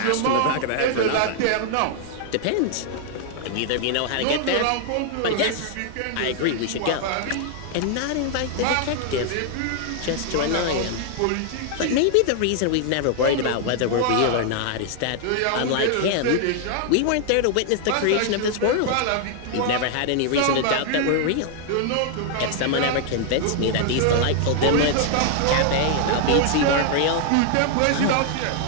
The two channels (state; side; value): different; both; correlation 0.00